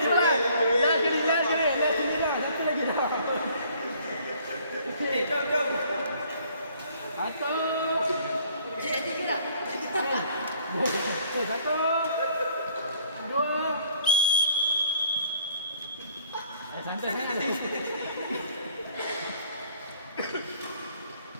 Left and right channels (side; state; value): both; inverted; correlation -0.60